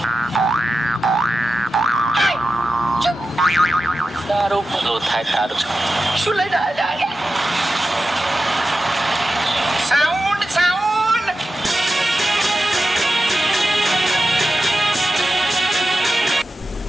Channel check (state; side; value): normal; both; correlation 0.92